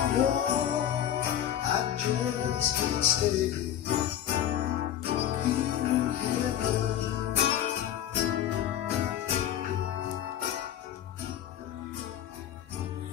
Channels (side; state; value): right; quieter; 10.8 dB